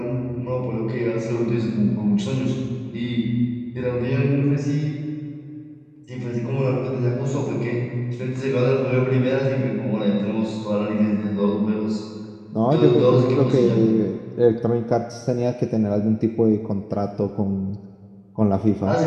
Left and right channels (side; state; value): both; identical; correlation 1.00